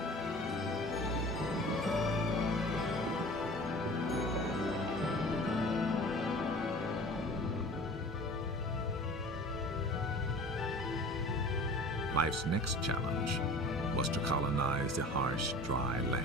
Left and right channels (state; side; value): normal; both; correlation 0.42